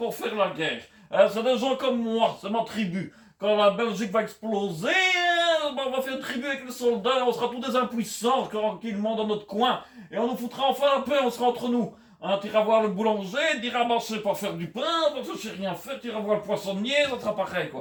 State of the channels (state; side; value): identical; both; correlation 1.00